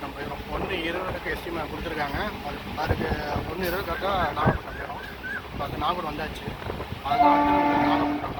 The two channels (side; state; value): both; identical; correlation 1.00